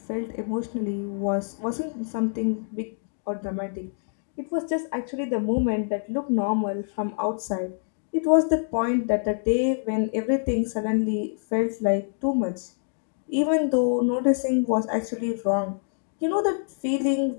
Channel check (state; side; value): silent; right; digital silence